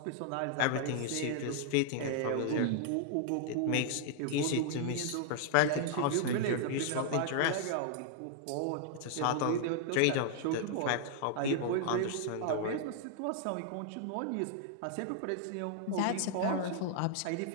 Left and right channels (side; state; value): both; different; correlation 0.00